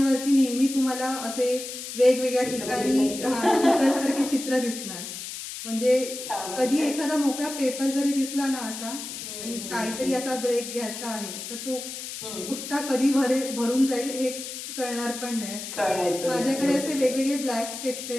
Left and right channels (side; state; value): left; noise; hiss, 8 dB below the sound